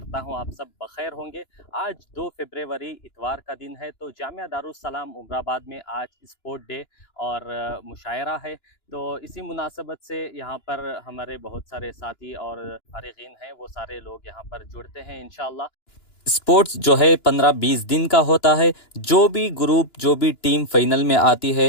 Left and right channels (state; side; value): late; right; 2.9 ms